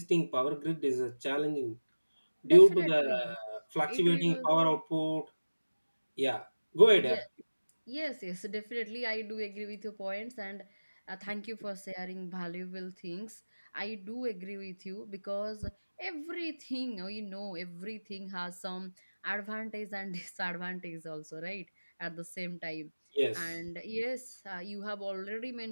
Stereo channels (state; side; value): inverted; both; correlation -1.00